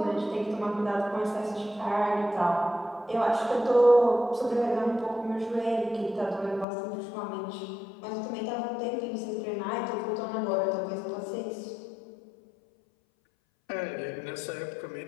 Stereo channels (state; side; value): drops out; right; at 6.7 s